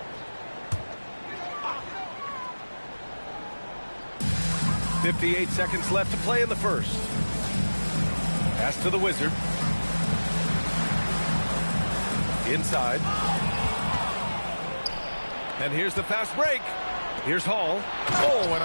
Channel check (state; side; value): inverted; both; correlation -1.00